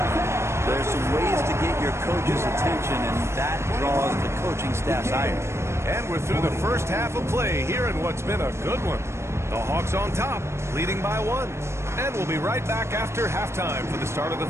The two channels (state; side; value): late; left; 0.13 ms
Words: There's some ways to get your coach's attention, and that draws the coaching staff's ire. And we're through the first half of play here in what's been a good one. The Hawks on top, leading by 1. And we'll be right back after halftime for the start of the